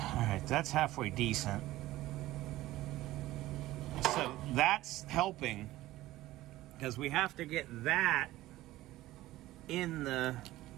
All right, that's halfway decent. So that's helping, because we have to get that in the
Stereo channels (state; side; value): quieter; left; 16.4 dB